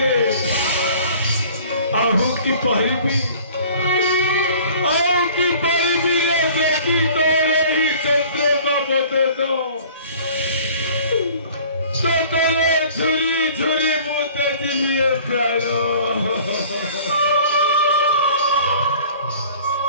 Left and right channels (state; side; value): inverted; both; correlation -0.49